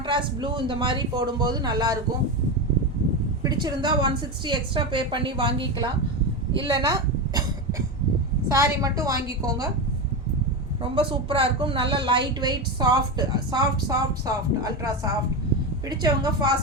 ப்ளூ இந்த மாதிரி போடும்போது நல்லாயிருக்கும். பிடிச்சிருந்தா 160 எக்ஸ்ட்ரா பே பண்ணி வாங்கிக்கலாம், இல்லைன்னா சாரி மட்டும் வாங்கிக்கோங்க. ரொம்ப சூப்பராக இருக்கும். நல்ல light weight soft soft soft soft ultra soft. பிடிச்சவங்க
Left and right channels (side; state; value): both; normal; correlation 0.16